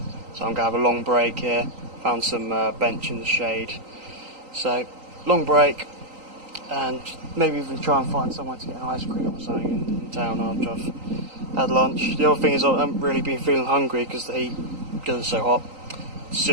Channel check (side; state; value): left; late; 3.8 ms